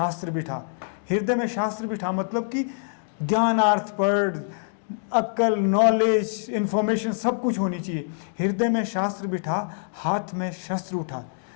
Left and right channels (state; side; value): silent; right; digital silence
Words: बिठा। हृदय में शास्त्र बिठा मतलब कि ज्ञानार्थ पर अक्ल, नॉलेज, इन्फॉर्मेशन सब कुछ होनी चाहिए। हृदय में शास्त्र बिठा, हाथ में शस्त्र उठा।